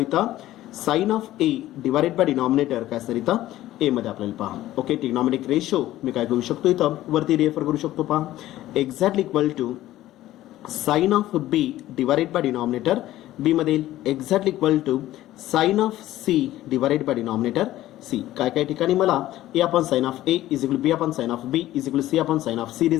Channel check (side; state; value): right; quieter; 14.7 dB